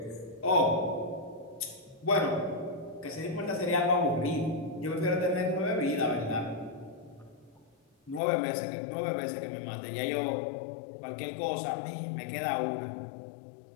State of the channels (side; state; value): right; drops out; at 8.2 s